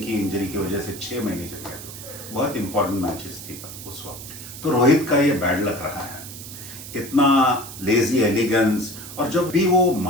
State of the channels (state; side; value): noise; right; hiss, 12 dB below the sound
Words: की इंजरी की वजह से 6 महीने चले गए, तो बहुत इंपॉर्टेंट मैचेस थी उस वक्त। तो रोहित का ये बैड लक रहा है, इतना लेजी एलिगेंस, और जब भी वो